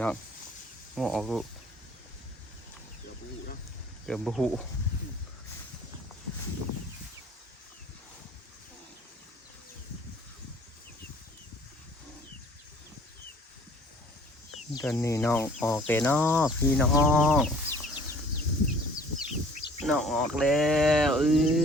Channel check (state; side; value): normal; both; correlation 0.52